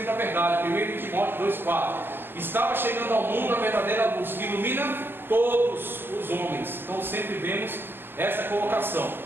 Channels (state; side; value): late; left; 0.098 ms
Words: da verdade. 1 Timóteo 2,4. Estava chegando ao mundo a verdadeira luz que ilumina todos os homens. Então sempre vemos essa colocação.